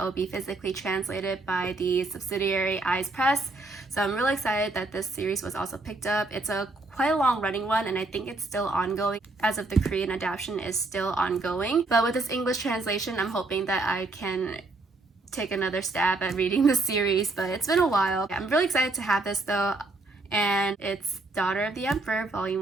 will be physically translated by the subsidiary Eyes Press. So I'm really excited that this series was also picked up. It's a quite a long running one, and I think it's still ongoing as of the Korean adaptation is still ongoing. But with this English translation, I'm hoping that I can take another stab at reading the series, but it's been a while. I'm really excited to have this though, and it's Daughter of the Emperor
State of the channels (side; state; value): left; quieter; 3.2 dB